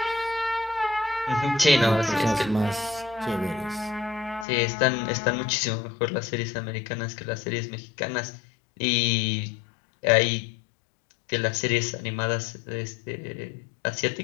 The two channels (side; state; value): right; drops out; at 4.5 s